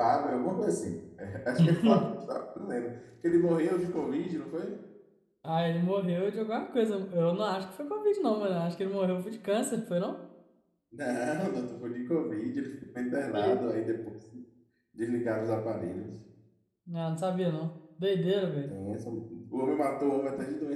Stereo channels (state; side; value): identical; both; correlation 1.00